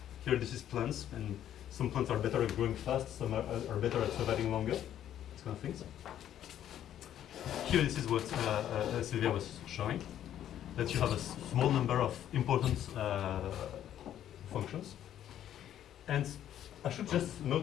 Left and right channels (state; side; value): quieter; right; 11.0 dB